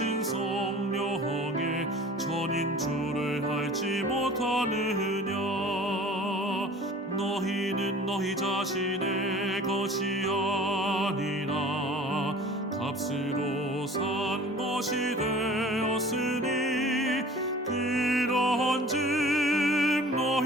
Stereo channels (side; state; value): both; normal; correlation 0.45